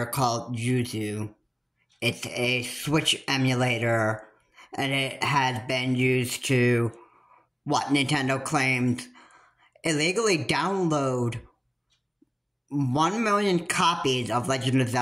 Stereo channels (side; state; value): both; identical; correlation 1.00